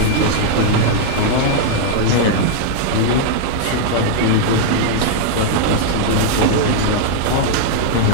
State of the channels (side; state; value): both; different; correlation -0.01